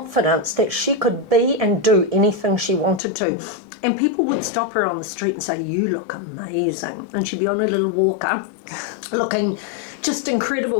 that she could be and do anything she wanted to. And people would stop her on the street and say, you look amazing. And she'd be on a little walker looking just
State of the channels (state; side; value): drops out; right; at 3.0 s